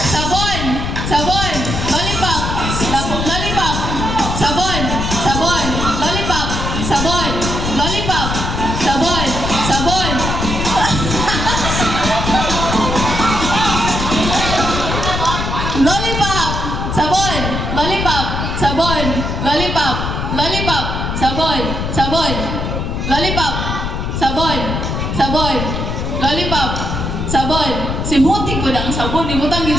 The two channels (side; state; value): left; noise; rumble, 2 dB below the sound